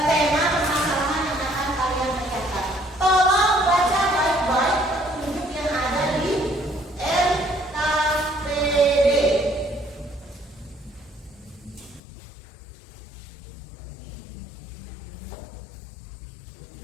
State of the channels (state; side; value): drops out; right; at 12.0 s